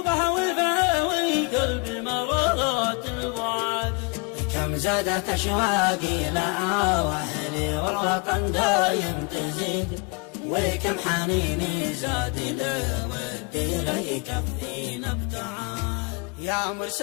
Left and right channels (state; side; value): quieter; right; 31.3 dB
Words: وفاوي قلبي مرضات البعاد. كم زادت أشواقي لها وأهلي والوطن دايم تزيد وكم حنيني زاد له ودي لا يكفينا ابتعاد. يا